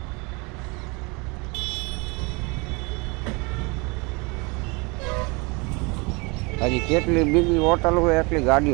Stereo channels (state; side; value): quieter; left; 28.1 dB